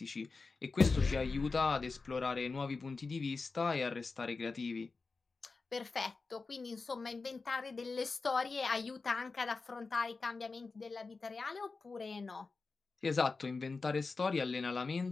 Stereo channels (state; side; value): quieter; right; 4.1 dB